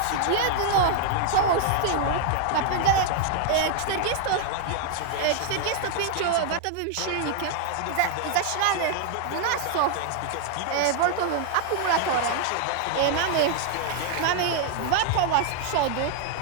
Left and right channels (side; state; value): both; different; correlation 0.00